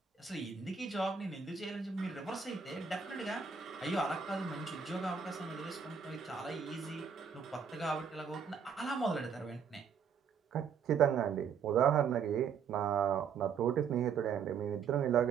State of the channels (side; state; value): left; quieter; 6.6 dB